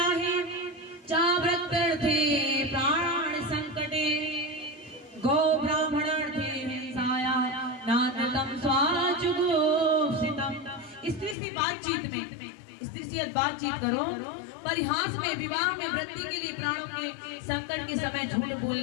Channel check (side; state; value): right; drops out; at 11.4 s